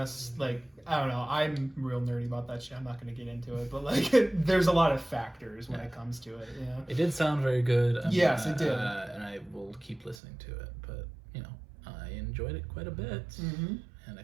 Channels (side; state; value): left; drops out; at 10.2 s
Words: Like I don't know, I'm real nerdy about that shit. I'm not going to get into it, but like there's a lot of factors when it comes to it. It did sound very good. Yes, it did, and I will keep listening to it. But I enjoyed it quite a bit, and I